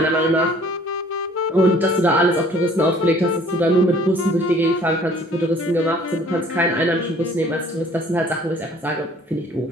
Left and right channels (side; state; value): both; normal; correlation 0.54